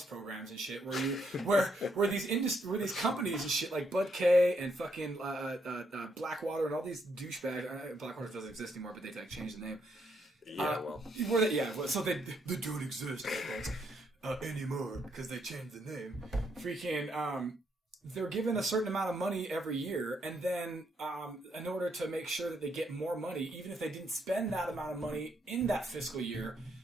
programs and shit, where these companies and shit like Bud K and fucking Blackwater and all these douchebags. Blackwater doesn't exist anymore, but they like changed the name. So they don't exist anymore because they changed the name. Freaking they're given a certain amount of money every year, and then in order to make sure that they get more money, even if they didn't spend that amount of money in that fiscal year,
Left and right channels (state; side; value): normal; both; correlation 0.75